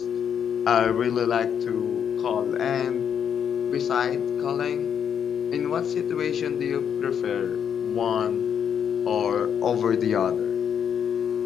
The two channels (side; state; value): right; quieter; 8.2 dB